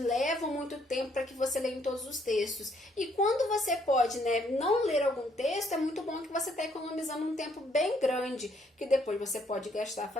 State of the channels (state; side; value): normal; both; correlation 0.68